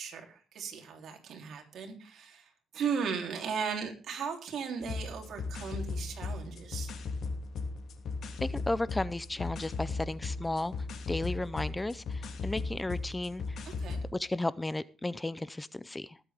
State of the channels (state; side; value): normal; both; correlation 0.83